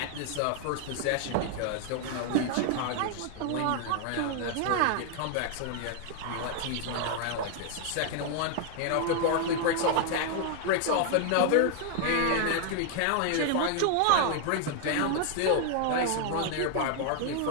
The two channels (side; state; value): both; different; correlation 0.00